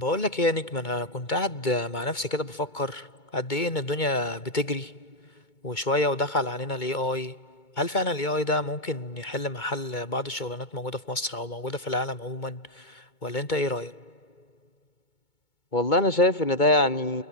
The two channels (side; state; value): right; late; 2.2 ms